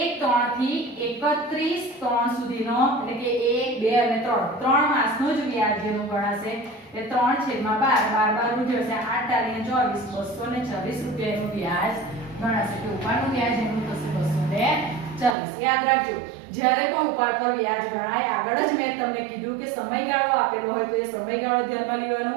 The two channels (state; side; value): drops out; left; at 15.4 s